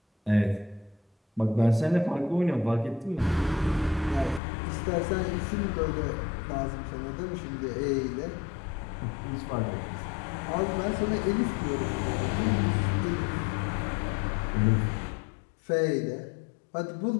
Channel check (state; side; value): drops out; right; at 4.4 s